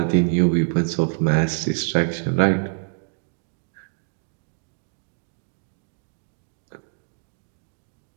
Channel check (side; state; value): left; silent; digital silence